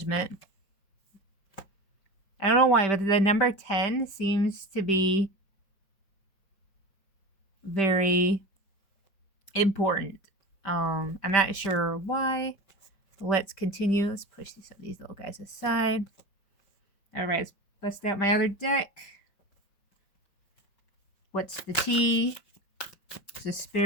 I don't know why, but the number 10 seems to be very important. I'm not sure why. Let's continue. Let's push some of these little guys aside. Alright, let's bust out my other deck. What's the tea? The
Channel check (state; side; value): late; right; 5.2 ms